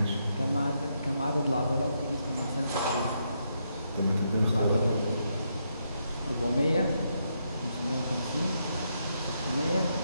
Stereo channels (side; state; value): both; inverted; correlation -0.79